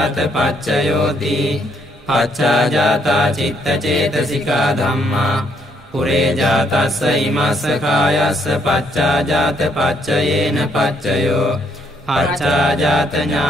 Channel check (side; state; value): both; normal; correlation 0.71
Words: පච්චයෝති පච්චාජාතා චිත්තචේතසිකා ධම්මා පුරේජාතස්ස ඉමස්ස කායස්ස පච්චාජාත පච්චයේන පච්චයෝ පච්චාජාත